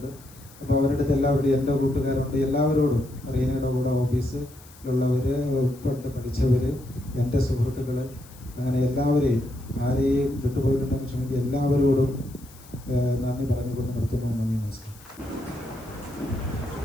അപ്പോൾ അവരുടെ അടുത്ത് എല്ലാവരുടെയും എൻ്റെ കൂട്ടുകാരുണ്ട്. എല്ലാവരോടും റീനയുടെ കൂടെ ഓഫീസിലുള്ളവർ, പണ്ട് പഠിച്ചവർ, എൻ്റെ സുഹൃത്തുക്കൾ, അങ്ങനെ എല്ലാവരെയും ആരെയും വിട്ടുപോയിട്ടുണ്ടെങ്കിൽ ക്ഷമിക്കുക, എല്ലാവരോടും നന്ദി പറഞ്ഞുകൊണ്ട് നിർത്തുന്നു. നന്ദി, നമസ്കാരം.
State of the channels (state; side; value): noise; left; hiss, 23 dB below the sound